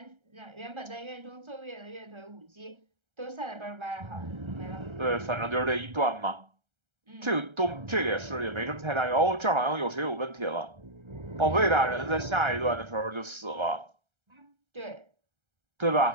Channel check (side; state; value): left; late; 1.3 ms